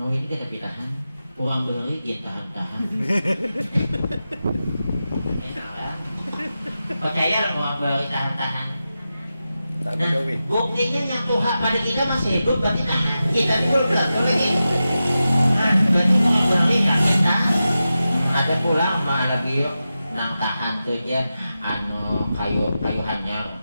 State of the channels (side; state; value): both; inverted; correlation -0.92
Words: mau ini kita tahan kurang beri dia tahan enak lah percaya lah kurang beri tahan. Nah, buktinya yang Tuhan pada kita masih hidup berarti tahan kita dulu lagi. Berarti berarti kita ada pulang mah lagi nang tahan tuh ya anu kayu hanyar